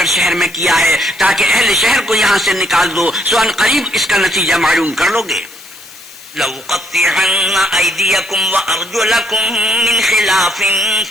شہر میں کیا ہے تاکہ اہل شہر کو یہاں سے نکال دو، سو ان قریب اس کا نتیجہ معلوم کر لو گے۔ لَأُقَطِّعَنَّ أَيْدِيَكُمْ وَأَرْجُلَكُمْ مِنْ خِلَافٍ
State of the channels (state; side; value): noise; left; hiss, 19 dB below the sound